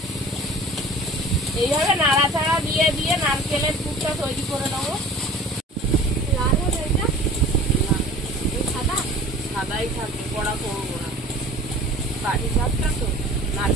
এইভাবে নাড়াচাড়া দিয়ে দিয়ে নারকেলের পুরটা তৈরি করে নেবো। লাল হবে এটা? সাদা? সাদাই থাকবে, কড়া করবো না। পাটিসাপটা তো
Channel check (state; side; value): normal; both; correlation 0.44